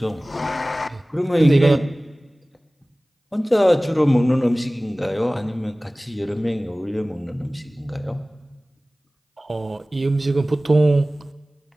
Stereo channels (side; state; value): both; normal; correlation 0.98